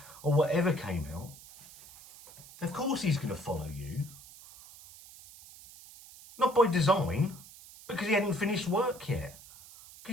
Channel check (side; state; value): right; noise; hiss, 19 dB below the sound